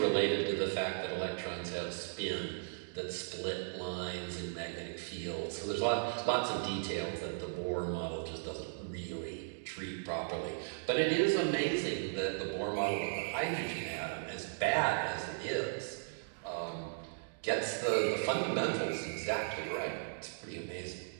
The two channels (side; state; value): left; silent; digital silence